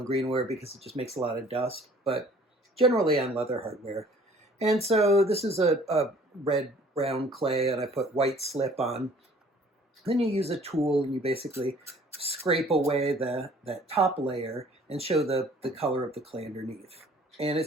greenware because it just makes a lot of dust, but generally on leather hardware. And so this is a red-brown clay, and I put white slip on. Then you use a tool, and you basically scrape away that top layer and show the color of the clay underneath. And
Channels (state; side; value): normal; both; correlation 0.54